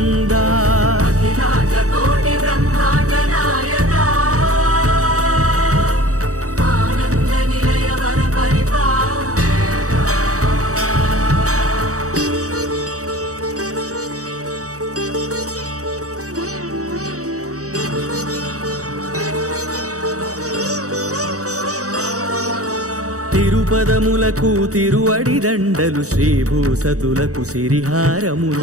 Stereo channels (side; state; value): left; late; 0.66 ms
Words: అఖిలాండ కోటి బ్రహ్మాండ నాయకా ఆనంద నిలయ వర తిరుపదములకు తిరువడి దండలు శ్రీభూసతులకు